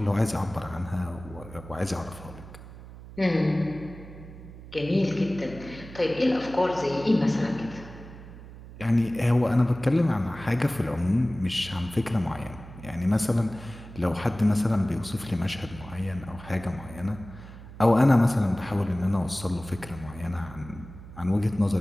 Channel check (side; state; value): right; noise; hum, 16 dB below the sound